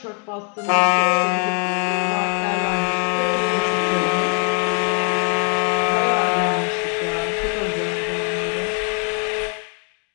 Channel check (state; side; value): quieter; right; 38.6 dB